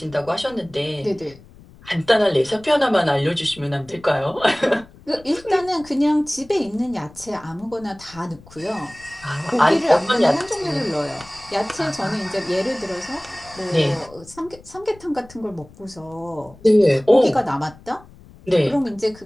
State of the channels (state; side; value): noise; left; rumble, 23 dB below the sound